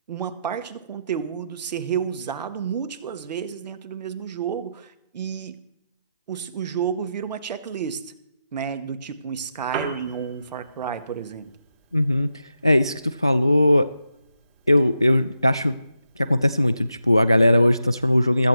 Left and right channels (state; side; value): inverted; both; correlation -0.85